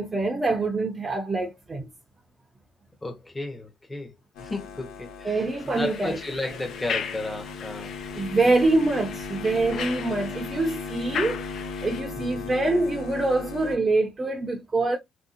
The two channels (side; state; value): both; normal; correlation 0.84